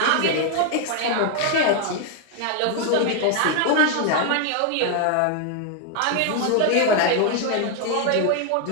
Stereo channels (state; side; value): different; both; correlation 0.00